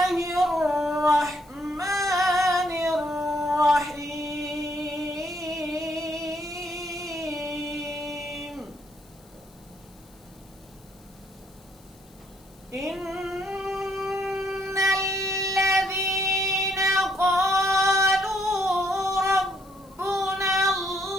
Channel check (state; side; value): noise; left; hiss, 28 dB below the sound